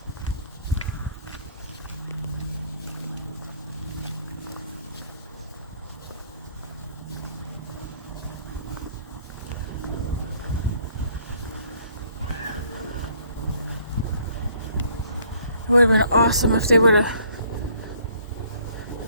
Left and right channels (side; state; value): both; inverted; correlation -0.61